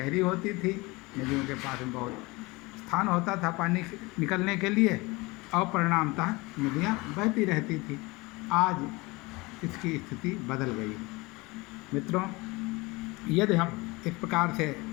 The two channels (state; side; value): quieter; right; 23.8 dB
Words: होती थी, नदियों के पास में बहुत स्थान होता था पानी निकलने के लिए, और परिणामतः नदियाँ बहती रहती थी। आज इसकी स्थिति बदल गई है। मित्रों, यदि हम इस प्रकार से